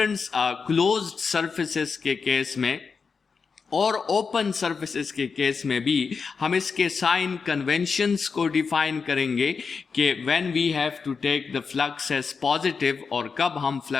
क्लोज्ड सरफेसेस के केस में और ओपन सरफेसेस के केस में भी हम इसके साइन कन्वेंशंस को डिफाइन करेंगे कि when we have to take the flux as positive और कब हम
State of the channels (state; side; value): quieter; right; 5.3 dB